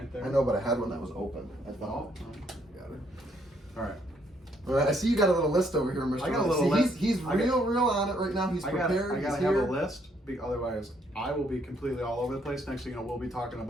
there. I know, but I had one that was open. I Oh, thought. Got it. all right. All right. I see you got a little list over here, Mr. I got a Ron. little See, list. He's I got- real on it right now. He's I prepared. gotta He's have here. a list. Otherwise, I will be completely all over the place. Next thing you know, we'll be talking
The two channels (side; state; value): both; normal; correlation 0.70